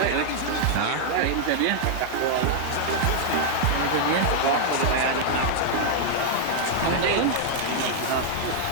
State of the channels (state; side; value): different; both; correlation -0.01